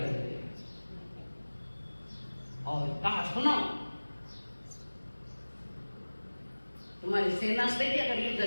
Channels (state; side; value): inverted; both; correlation -1.00